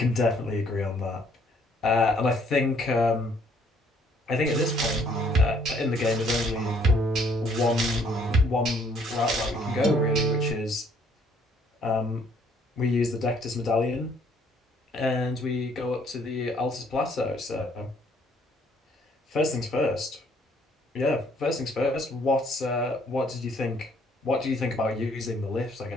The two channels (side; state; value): both; normal; correlation 0.63